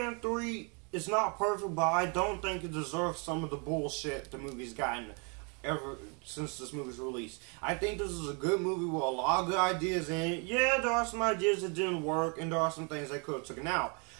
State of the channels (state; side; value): quieter; left; 34.6 dB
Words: 3 is not perfect, but I don't think it deserves some of the bullshit the movie's gotten ever since this movie's released. I think this is a good movie with a lot of good ideas in it. Yeah, there are some ideas that didn't work, and there are some things they could have taken out.